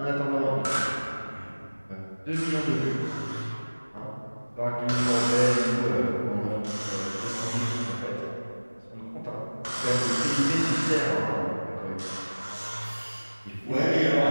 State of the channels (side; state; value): both; inverted; correlation -1.00